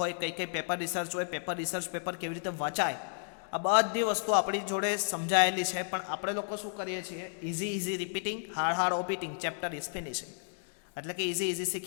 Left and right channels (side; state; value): right; silent; digital silence